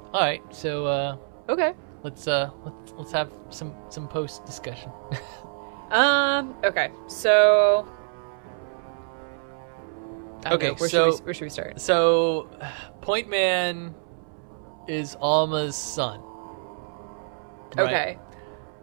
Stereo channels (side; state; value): left; silent; 61 dB below the other